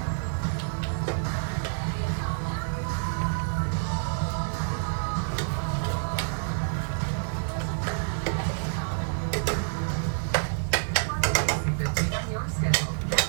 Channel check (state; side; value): silent; left; 59 dB below the other